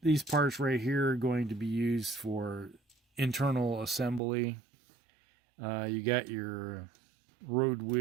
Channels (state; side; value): drops out; left; at 4.2 s